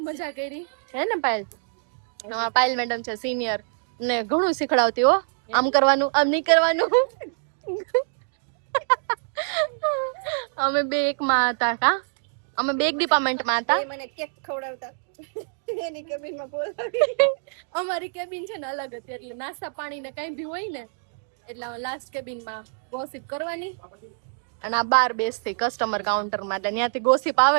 મજા કરી હે ને પાયલ. પાયલ મેડમ છે સિનિયર ને ઘણું શીખડાવતી હો. આમ કરવાનું આમ નહીં કરવાનું. અમે બે એકમાં હતા. કા અમે બે એક ડિપાર્ટમેન્ટમાં હતા. મને કેક ખવડાવતા એની કેબિનમાં બોલાવી. અમારી કેબિન છે ને અલગ હતી એટલે નાસ્તા પાણી ને કઈ બી હોય ને એટલે લાસ્ટ કેબિનમાં ગોસિપ કરવાની અને આ બાર બેસતી કસ્ટમર કાઉન્ટર માં. એટલે ત્યાંથી ગોસિપ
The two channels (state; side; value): silent; left; digital silence